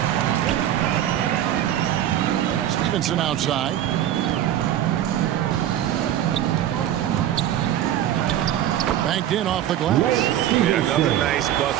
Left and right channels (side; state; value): left; quieter; 11.6 dB